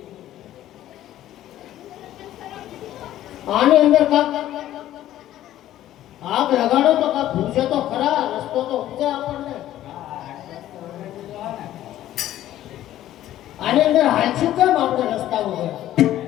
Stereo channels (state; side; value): quieter; right; 13.2 dB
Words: આની અંદર કાંક આગ લગાડો તો કાંક પૂછે તો ખરા, રસ્તો તો પૂછે આપણને. આની અંદર હાલશું કેમ આપણે રસ્તા વગર?